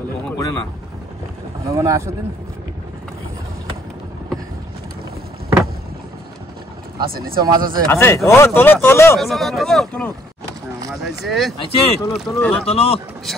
কখন করে না? ভালো মনে আসো দিন আছে নিচে মাছ আছে আছে? ও তোলো, তোলো। চলো হ্যাঁ, মাছ আছে আছে? তোলো, তোলো। তোলো, তোলো।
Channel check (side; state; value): both; normal; correlation 0.64